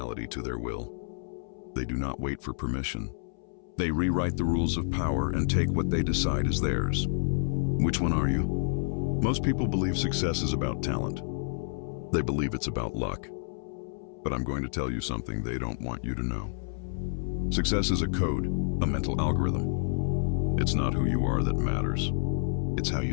to their will. They do not wait for permission. They rewrite the rules of power and take what they decide is theirs. Which one are you? Most people believe success is about talent. They believe it's about luck. But I'm going to tell you something they don't want you to know. Success is a code, a mental algorithm. It's not who you are that matters. It's how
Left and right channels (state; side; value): silent; right; 58 dB below the other